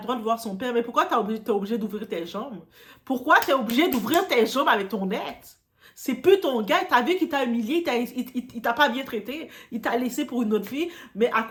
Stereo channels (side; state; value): both; identical; correlation 1.00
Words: droit de voir son père, mais pourquoi t'es obligé d'ouvrir tes jambes? Pourquoi t'es obligé d'ouvrir tes jambes avec ton ex? C'est plus ton gars, t'as vu qu'il t'a humilié, il t'a pas bien traité, il t'a laissé pour une autre fille, mais à